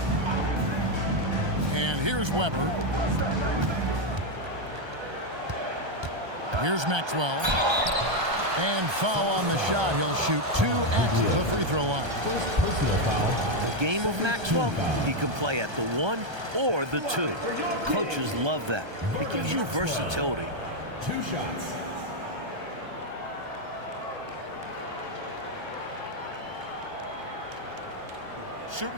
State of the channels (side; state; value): left; late; 1.3 ms